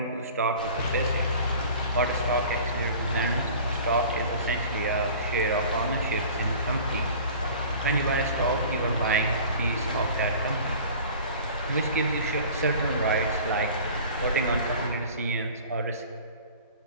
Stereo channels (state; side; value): inverted; both; correlation -0.43